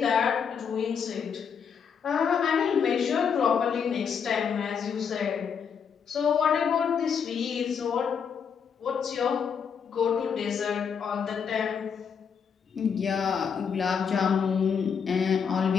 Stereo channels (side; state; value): right; quieter; 6.8 dB